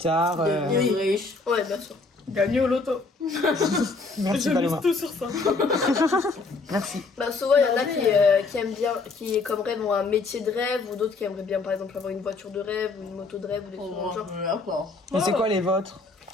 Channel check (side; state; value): right; quieter; 3.8 dB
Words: Devenir riche. Ouais, bien sûr. Gagner au loto. Merci Je Paloma. mise tout sur ça. Merci. Souvent, il y en a qui aiment bien, qui comme rêve ont un métier de rêve, ou d'autres qui aimeraient bien, par exemple, avoir une voiture de rêve, ou une moto de rêve, ou des trucs dans le genre. D'accord. Et c'est quoi les vôtres?